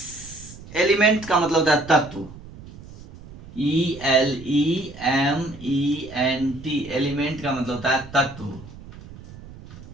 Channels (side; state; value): right; noise; rumble, 17 dB below the sound